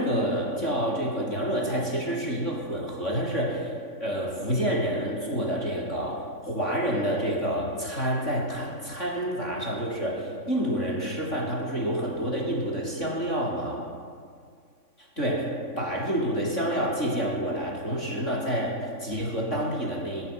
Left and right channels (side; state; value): right; late; 3.5 ms